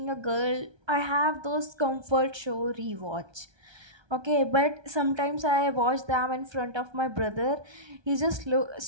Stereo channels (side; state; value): left; late; 1.3 ms